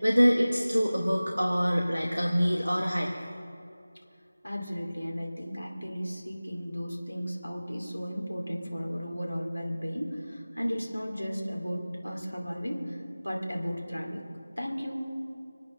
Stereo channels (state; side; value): inverted; both; correlation -0.98